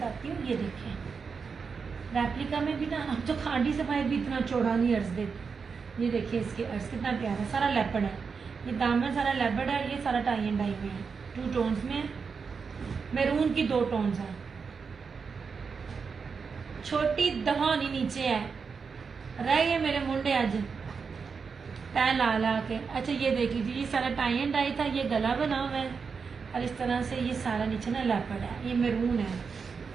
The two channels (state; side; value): quieter; left; 5.5 dB